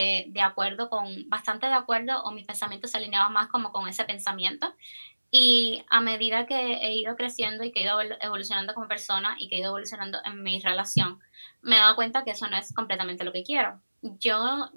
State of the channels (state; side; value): inverted; both; correlation -1.00